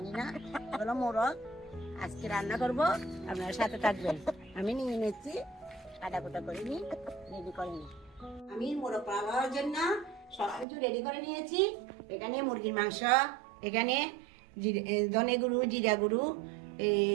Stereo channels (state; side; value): drops out; left; at 10.7 s